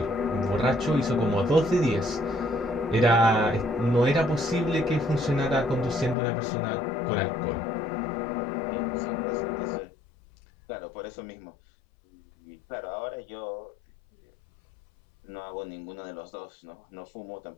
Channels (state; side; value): drops out; right; at 6.2 s